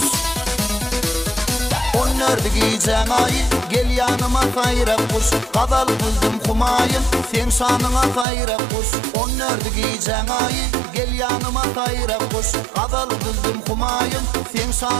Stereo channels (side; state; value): left; drops out; at 8.2 s